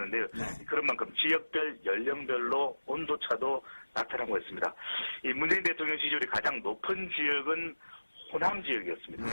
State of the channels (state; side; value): inverted; both; correlation -1.00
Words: 네. 그런 만큼 지역별 연령별로 온도차도 나타나고 있습니다. 이 문재인 대통령 지지율이 가장 높은 지역은 호남 지역이었습니다. 네.